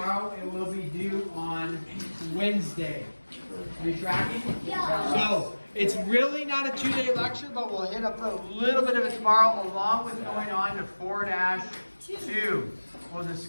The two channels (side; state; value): both; inverted; correlation -1.00